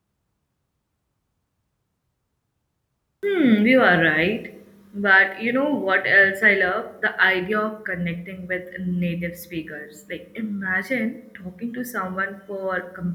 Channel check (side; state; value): both; identical; correlation 1.00